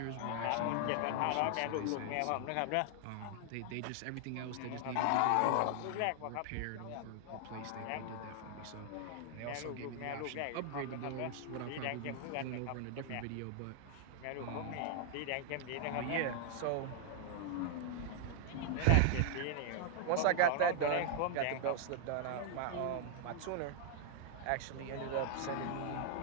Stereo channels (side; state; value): both; different; correlation 0.00